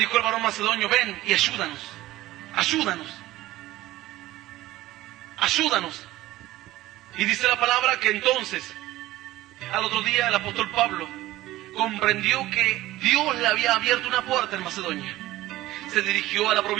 el varón macedonio, ven y ayúdanos. Ayúdanos. Ayúdanos. Y dice la palabra que entonces, al otro día el apóstol Pablo comprendió que Dios le había abierto una puerta en Macedonia. Se dirigió a la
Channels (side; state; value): left; quieter; 16.5 dB